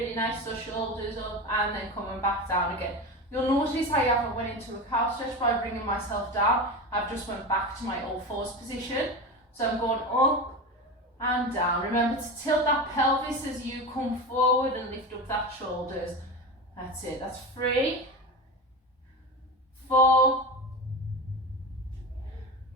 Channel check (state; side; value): normal; both; correlation 0.24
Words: nice. So shoulders up and then coming back down again. You'll notice I haven't went into a cat stretch by bringing myself down. I've just went back to my all fours position. So I'm going up and down. Remember to tilt that pelvis as you come forward and lift up that shoulders. That's it. That's 3, 4,